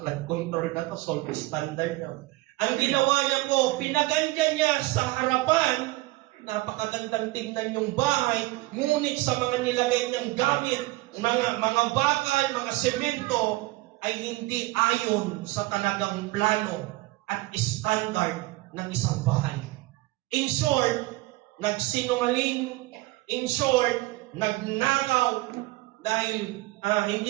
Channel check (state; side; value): quieter; left; 20.0 dB